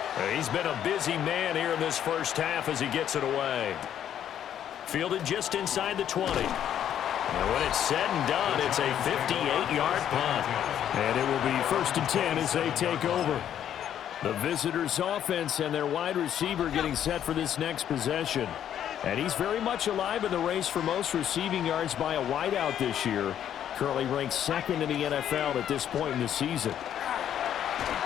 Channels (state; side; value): quieter; right; 10.1 dB